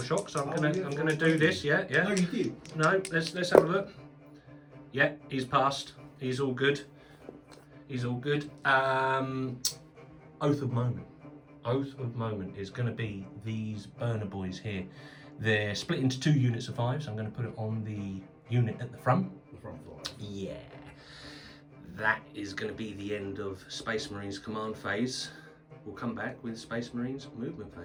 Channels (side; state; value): both; identical; correlation 1.00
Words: shock, so I'm gonna do this. Yeah. No, you did. No, let's have a look. Yeah, he's passed. He's all good. He's all good. Oath of Moment. Oath of Moment is going to be these burner boys here. They're split into 2 units of 5, so I'm going to put it on the unit at the front. The front floor. Yeah. That is going to be the end of Space Marines command phase. We'll come back with Space Marines movement